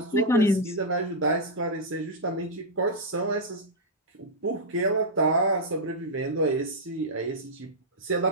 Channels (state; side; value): normal; both; correlation -0.05